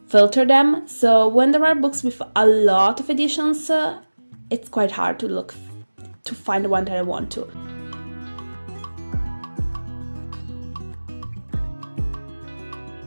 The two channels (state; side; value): inverted; both; correlation -1.00